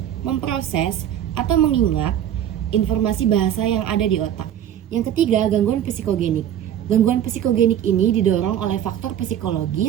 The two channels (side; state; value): left; quieter; 10.5 dB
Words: memproses, atau mengingat informasi bahasa yang ada di otak. Yang ketiga, gangguan psikogenik. Gangguan psikogenik ini didorong oleh faktor